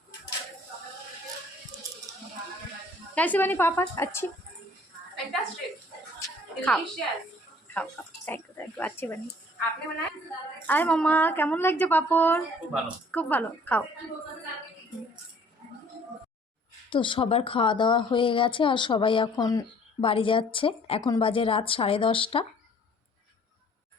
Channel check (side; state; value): both; normal; correlation 0.56